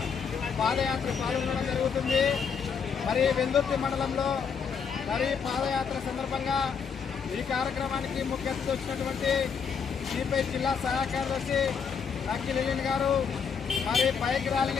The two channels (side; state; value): right; quieter; 6.4 dB